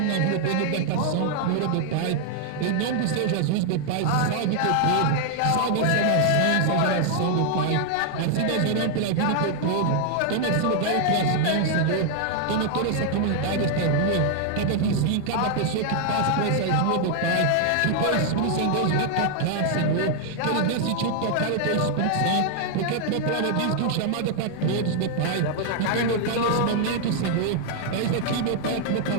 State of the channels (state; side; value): different; both; correlation 0.00